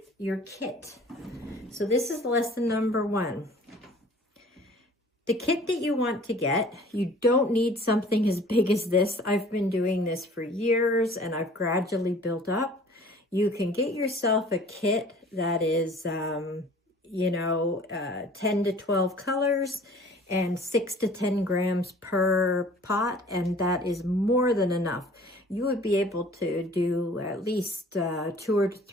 your kit. So this is lesson number 1. The kit that you want to get, you don't need something as big as this. I've been doing this for years and I've gradually built up. You can get yourself a kit that is, 10 to 12 colors and 6 to 10 grams per pot, and that is more than enough. You would be able to do at least 200 to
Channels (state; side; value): normal; both; correlation 0.49